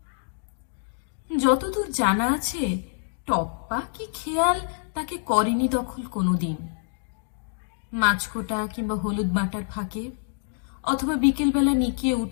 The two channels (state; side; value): silent; right; digital silence